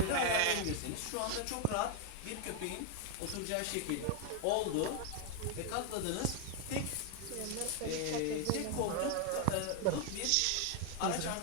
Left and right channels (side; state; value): both; different; correlation 0.00